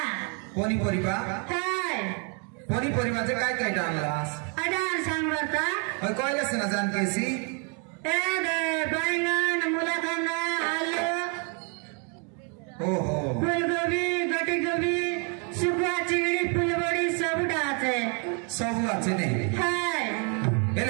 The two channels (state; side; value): quieter; left; 37.2 dB